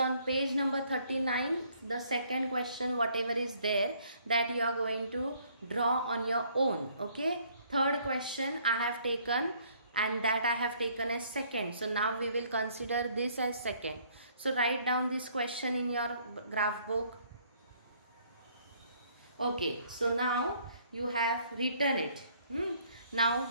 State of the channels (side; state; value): both; inverted; correlation -0.63